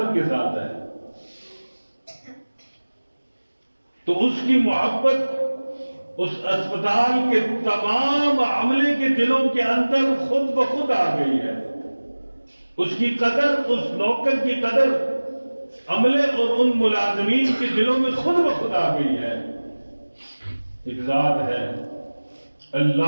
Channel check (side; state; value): both; inverted; correlation -1.00